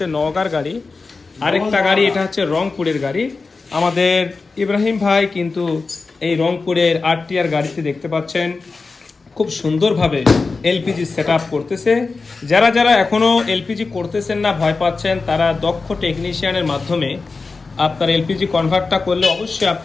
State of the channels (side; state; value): right; quieter; 4.1 dB